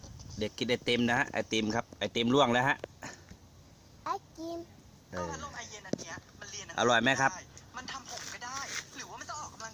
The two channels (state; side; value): identical; both; correlation 1.00